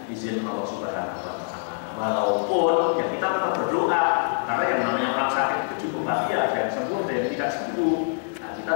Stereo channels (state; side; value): silent; right; digital silence